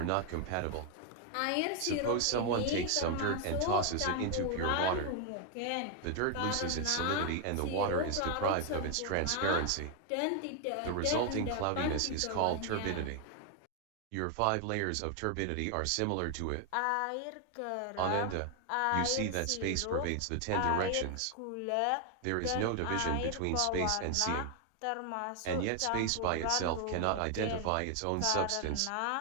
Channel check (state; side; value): different; both; correlation 0.00